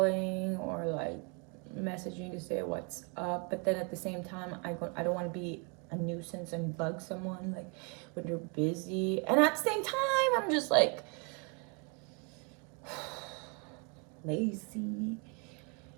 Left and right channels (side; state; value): left; quieter; 34.4 dB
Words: or like messaging to say what's up, but then at the same time, I don't want to be a nuisance and bug someone like when they're busy, and at the same time, I'm just like lazy.